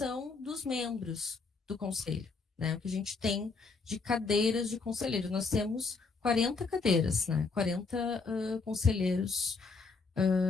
dos membros do conselho, né? O que a gente tem de cadeiras de conselheiro. Nós temos 40 cadeiras, né? 40 conselheiros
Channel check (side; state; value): right; quieter; 4.3 dB